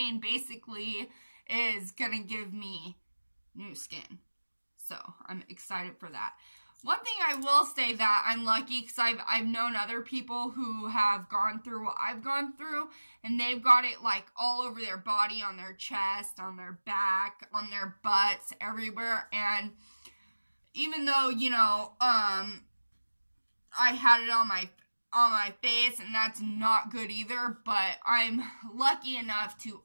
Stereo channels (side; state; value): both; inverted; correlation -1.00